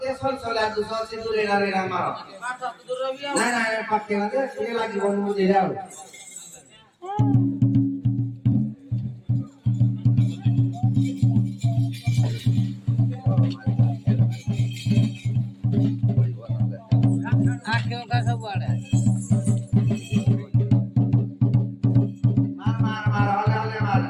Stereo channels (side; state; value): both; identical; correlation 1.00